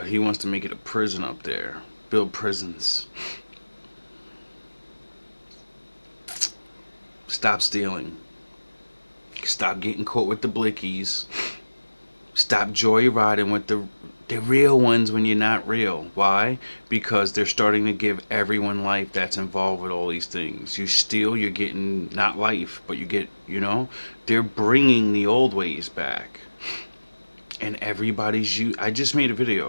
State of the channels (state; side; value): inverted; both; correlation -1.00